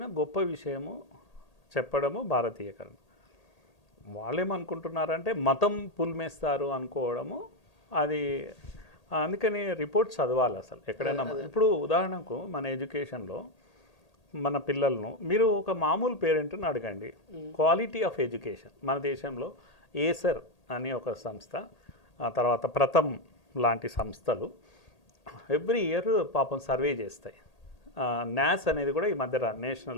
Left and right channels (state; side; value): late; right; 1.8 ms